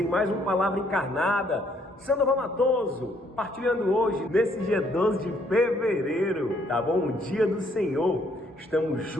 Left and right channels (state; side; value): normal; both; correlation 0.68